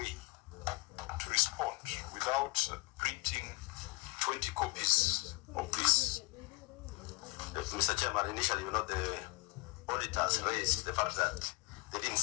to respond without printing 20 copies of this? Mr. Chairman, initially, the auditors raised the fact that they didn't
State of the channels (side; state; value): right; quieter; 25.8 dB